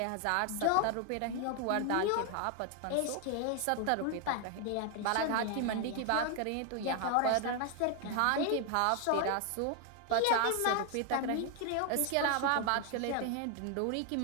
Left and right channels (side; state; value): both; different; correlation 0.00